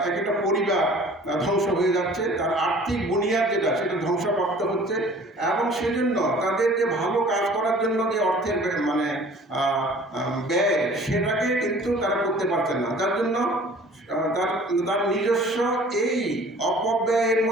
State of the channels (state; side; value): normal; both; correlation 0.49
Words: একটা পরিবার ধ্বংস হয়ে যাচ্ছে, তার আর্থিক বুনিয়াদ যেটা সেটা ধ্বংসপ্রাপ্ত হচ্ছে এবং সেজন্য তাদের যে ভালো কাজ করার জন্য যে অর্থের ব্যয় সেটাকে কিন্তু তারা করতে পারছে না, যার জন্য তার নিজস্ব এই অপব্যয়ের